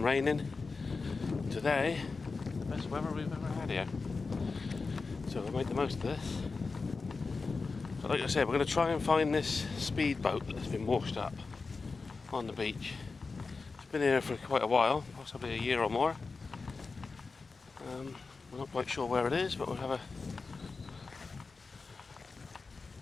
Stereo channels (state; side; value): quieter; right; 4.2 dB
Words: raining. Today, the best weather we've ever had here. So we'll make the most of this. But like I said, we're going to try and find this speedboat that's been washed up on the beach. It's been here for quite a while, possibly a year or more. We're not quite sure where it is, but we'll have